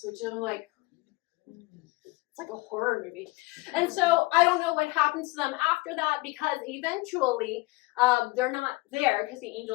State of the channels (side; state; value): right; quieter; 22.6 dB